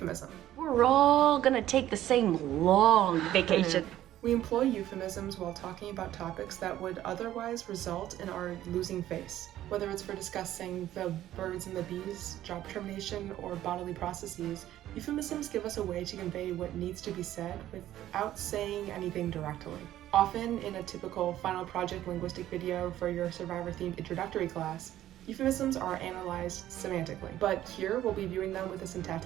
We're all gonna take the same long vacation. We employ euphemisms while talking about topics that would otherwise result in our losing face. Whether it's for discussing the birds and the bees, job termination, or bodily processes, euphemisms give us a way to convey what needs to be said without saying anything directly. Often in a typical final project linguistic video for your Survivor-themed introductory class, euphemisms are analyzed semantically, but here we'll be viewing them with a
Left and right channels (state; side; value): quieter; left; 13.1 dB